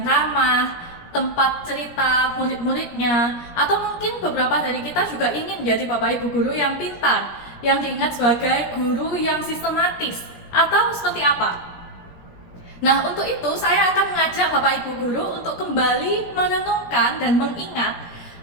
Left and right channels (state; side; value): late; right; 17 ms